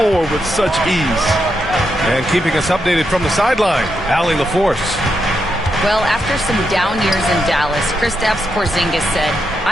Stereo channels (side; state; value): both; normal; correlation 0.83